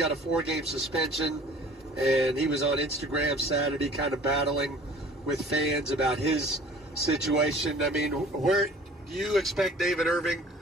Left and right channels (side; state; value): both; normal; correlation 0.48